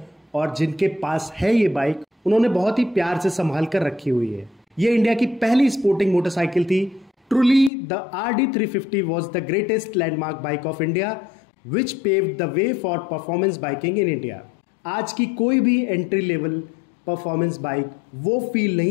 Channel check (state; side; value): drops out; right; at 7.7 s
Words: और जिनके पास है ये बाइक उन्होंने बहुत ही प्यार से संभाल कर रखी हुई है। ये इंडिया की पहली स्पोर्टिंग मोटरसाइकिल थी। Truly, the RD350 was the greatest landmark bike of India, which paved the way for performance biking in India. आज की कोई भी एंट्री लेवल परफॉर्मेंस बाइक वो फील